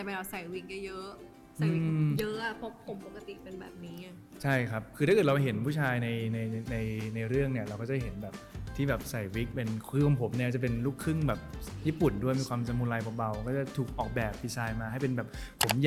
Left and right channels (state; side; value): identical; both; correlation 1.00